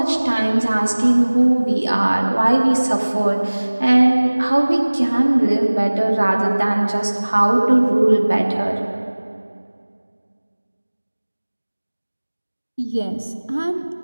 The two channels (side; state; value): both; inverted; correlation -1.00